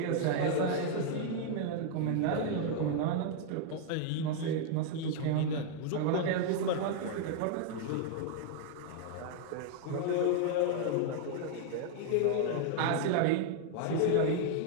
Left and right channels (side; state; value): both; different; correlation 0.00